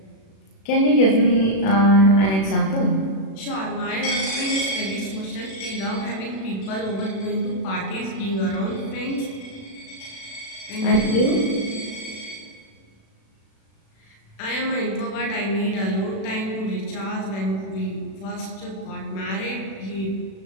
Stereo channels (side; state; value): right; late; 36 ms